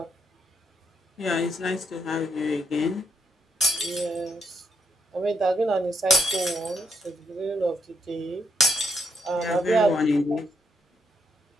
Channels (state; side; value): normal; both; correlation 0.76